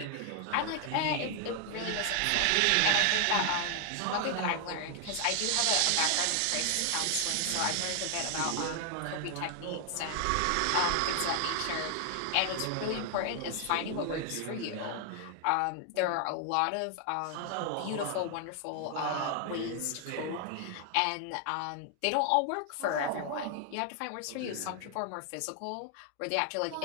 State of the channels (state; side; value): different; both; correlation 0.00